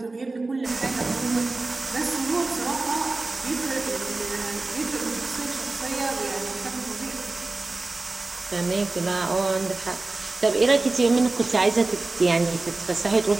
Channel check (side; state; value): left; quieter; 3.4 dB